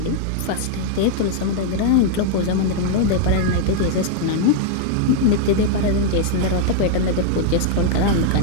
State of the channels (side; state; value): both; different; correlation -0.01